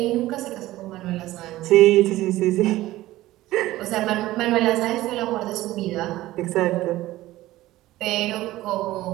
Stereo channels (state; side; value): quieter; left; 16.4 dB